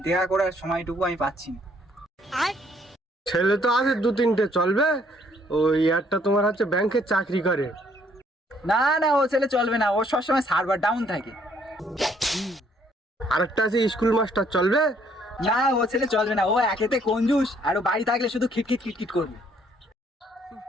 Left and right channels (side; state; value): both; normal; correlation 0.65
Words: দেখা করার সময়টুকু আমি পাচ্ছি না। ছেলে তো আছে দু তিনটে, চলবে। ওই একটা তোমার হচ্ছে ব্যাংকে চাকরি করে। না না, ও ছেলে চলবে না, ও সবসময় সার্ভার ডাউন থাকে। আরেকটা আছে স্কুল মাস্টার, চলবে। না, ও ছেলে চলবে না, ও একেতে কঞ্জুস, আর ও বাড়ি থাকলে শুধু খিটখিট খিটখিট করবে।